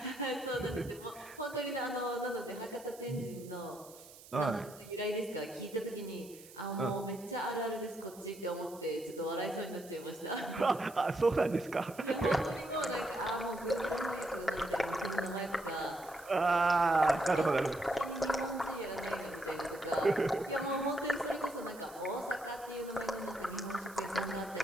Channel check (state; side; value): noise; right; hiss, 19 dB below the sound